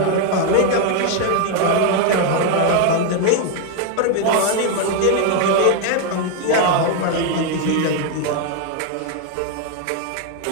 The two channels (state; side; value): different; both; correlation 0.01